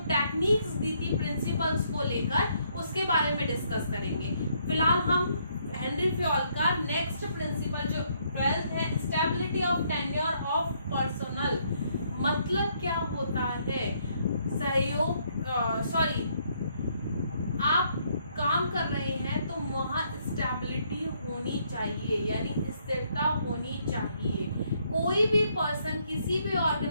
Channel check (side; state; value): both; inverted; correlation -0.71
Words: टेक्निक्स दी थी प्रिंसिपल्स को लेकर उसके बारे में डिस्कस करेंगे। फिलहाल हम हेनरी फ्योल का नेक्स्ट प्रिंसिपल जो 12th है, stability of tenure of personal, मतलब क्या होता है सहयोग, आप काम कर रहे हैं तो वहाँ स्टेबिलिटी होनी चाहिए, यानी स्थिरता होनी चाहिए। कोई भी पर्सन किसी भी